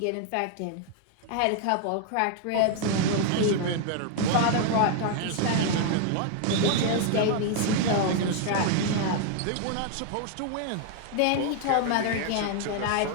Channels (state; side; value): different; both; correlation 0.00